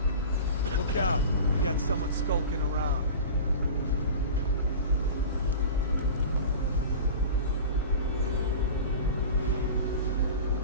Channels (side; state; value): both; inverted; correlation -0.34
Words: Look out. We got someone skulking around.